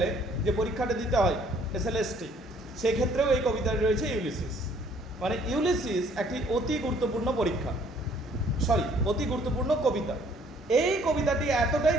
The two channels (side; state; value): both; normal; correlation 0.60